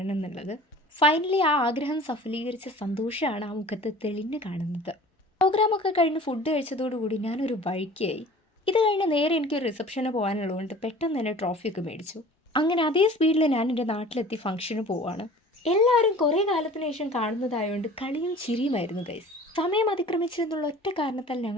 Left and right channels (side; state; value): both; normal; correlation 0.45